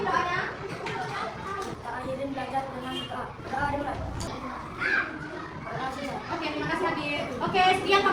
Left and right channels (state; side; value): identical; both; correlation 1.00